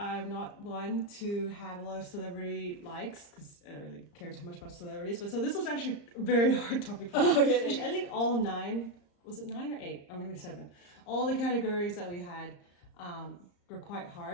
not one to have a lot of celebrity likes because I don't really care too much about celebrities. But so this was actually a very hard topic for me. Oh, really? Actually, I think all 9, was it 9 or 8? Or maybe 7. All the categories that we had were quite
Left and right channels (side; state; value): right; late; 34 ms